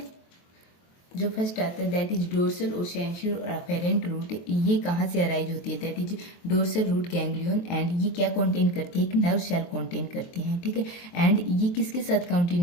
जो फर्स्ट आता है दैट इज डोर्सल और सेंसरी और अफेरेंट रूट, ये कहाँ से अराइज होती है, that is dorsal root ganglion, and ये क्या कंटेन करती है, एक नर्व सेल कंटेन करती है, ठीक है। एंड ये किसके साथ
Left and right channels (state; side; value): late; right; 23 ms